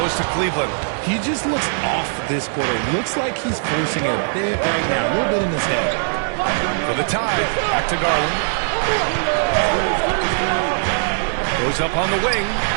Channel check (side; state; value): left; silent; digital silence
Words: to Cleveland. He just looks off this quarter. Looks like he's forcing it a bit right now. A little bit in his head. For the tie. Back to Garland. Goes up on the wing.